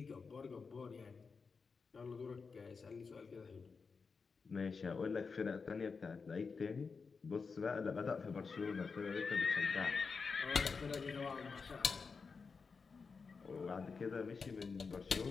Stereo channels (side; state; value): right; quieter; 5.0 dB